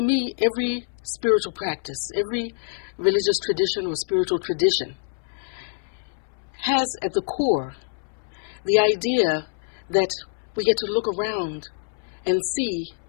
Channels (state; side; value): silent; right; 60 dB below the other